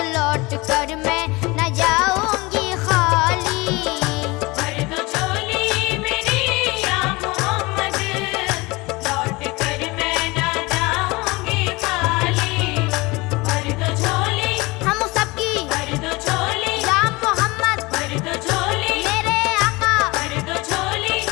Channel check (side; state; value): right; quieter; 23.4 dB